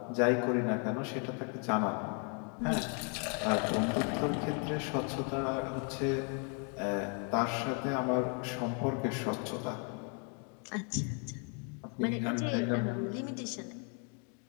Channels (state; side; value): quieter; right; 39.2 dB